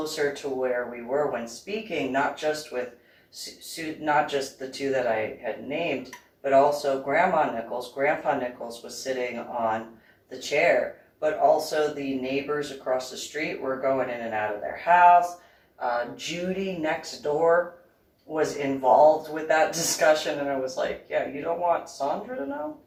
to where we were when speaking, not just with, not just the 2 that I had named, but also Grandma Nichols. Grandpa Nichols was sitting on the chair, but also the neighbors across the street were going in and out of their house. Judy next door was involved with that discussion, and I was like, yeah, you don't want Sandra to know?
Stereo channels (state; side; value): identical; both; correlation 1.00